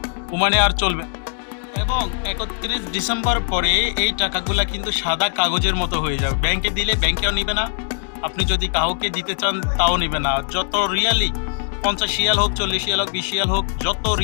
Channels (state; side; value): silent; right; digital silence